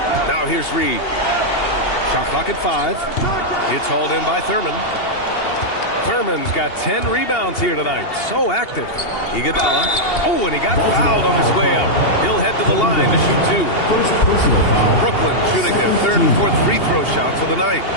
Now here's Reed. Shot clock at 5. It's hauled in by Thurman. Thurman's got 10 rebounds here tonight. So active. Iguodala. Oh, and he got fouled on his way up. He'll head to the line to shoot 2. First personal foul. Brooklyn shooting their 3rd and 4th free throw shots of the night.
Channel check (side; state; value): right; late; 2.8 ms